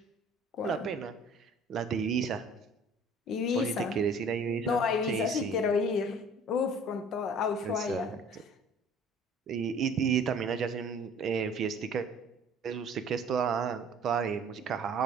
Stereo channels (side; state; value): both; normal; correlation 0.50